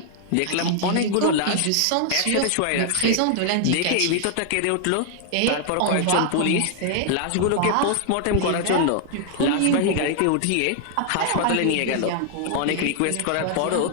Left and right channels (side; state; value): both; different; correlation 0.00